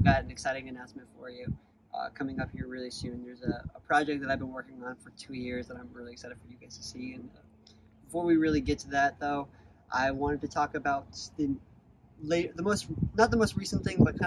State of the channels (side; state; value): both; identical; correlation 1.00